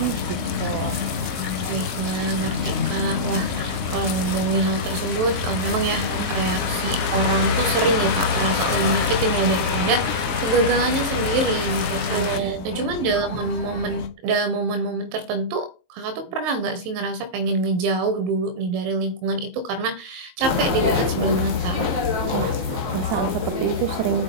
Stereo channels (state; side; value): late; left; 22 ms